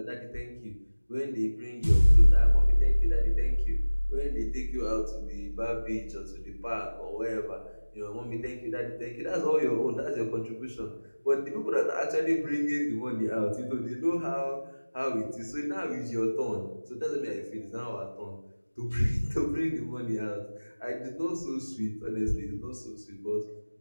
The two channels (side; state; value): both; inverted; correlation -1.00